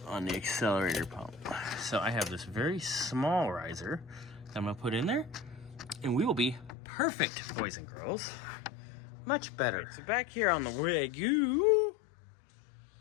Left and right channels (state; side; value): drops out; right; at 6.8 s